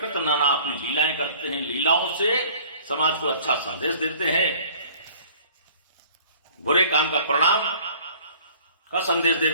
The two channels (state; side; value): inverted; both; correlation -0.50